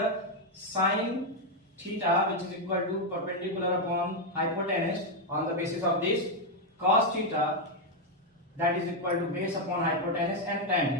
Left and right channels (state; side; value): normal; both; correlation 0.02